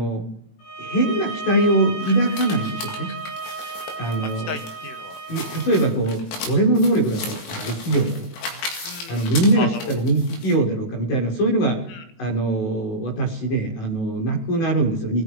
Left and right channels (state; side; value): late; right; 18 ms